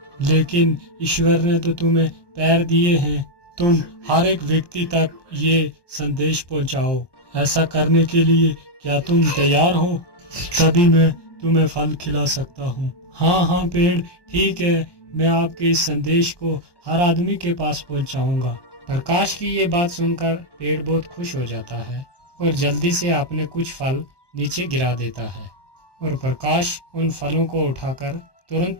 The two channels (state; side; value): late; right; 1.1 ms